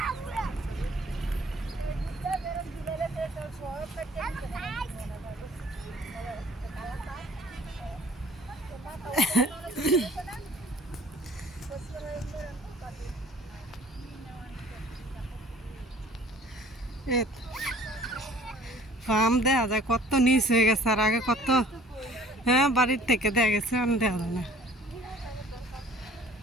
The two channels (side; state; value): both; normal; correlation 0.53